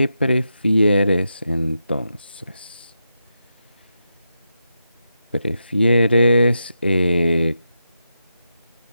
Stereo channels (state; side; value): inverted; both; correlation -0.87